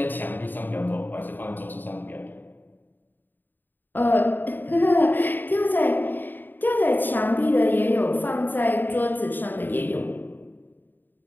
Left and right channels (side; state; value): right; late; 0.091 ms